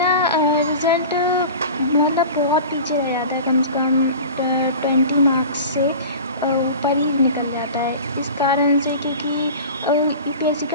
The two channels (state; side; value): inverted; both; correlation -0.36